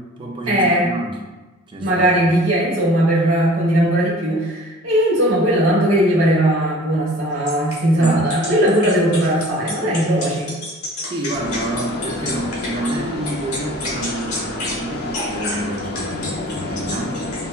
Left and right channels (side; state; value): both; normal; correlation 0.47